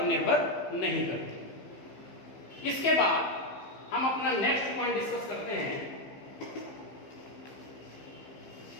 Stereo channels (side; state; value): right; late; 15 ms